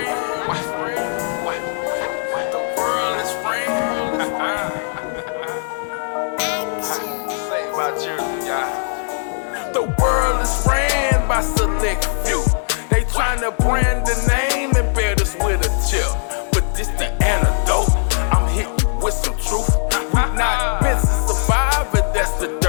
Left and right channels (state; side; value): silent; right; 66 dB below the other